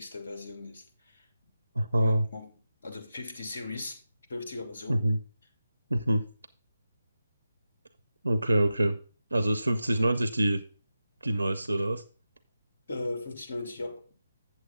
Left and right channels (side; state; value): both; inverted; correlation -0.92